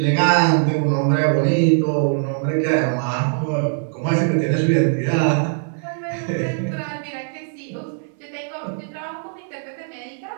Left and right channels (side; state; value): left; silent; 61 dB below the other